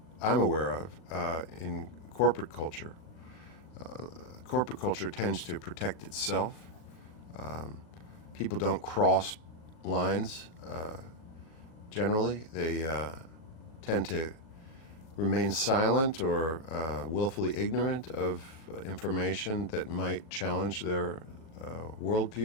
I'm aware of in corporate culture. Corporate culture tends to protect itself. People don't cross lines generally. They tend to remain silent or willfully ignorant of information that might challenge their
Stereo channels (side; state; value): right; late; 39 ms